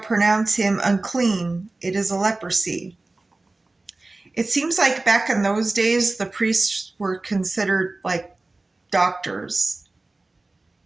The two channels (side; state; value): left; quieter; 3.1 dB